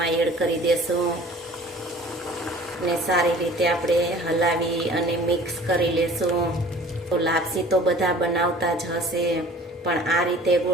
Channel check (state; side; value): normal; both; correlation 0.48